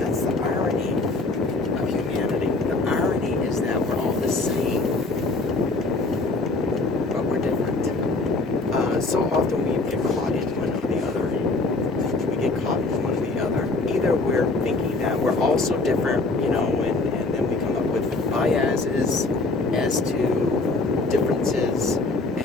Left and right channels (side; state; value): right; quieter; 3.3 dB